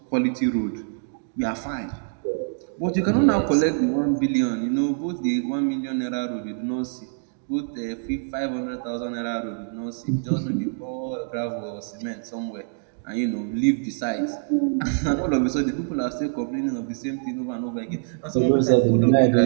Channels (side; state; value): left; silent; digital silence